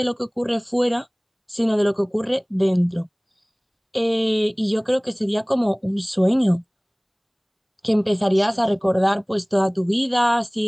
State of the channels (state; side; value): identical; both; correlation 1.00